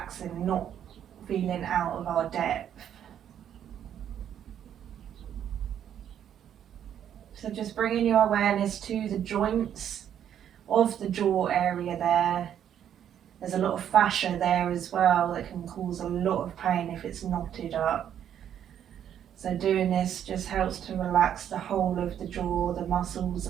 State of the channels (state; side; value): quieter; left; 9.7 dB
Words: not feeling out of our depth. So just bringing your awareness to the joints of the jaw area there. There's a lot of fascia there as well that can cause a lot of pain if it's knotted up. So doing this just helps to relax the whole of the jaw, the muscles,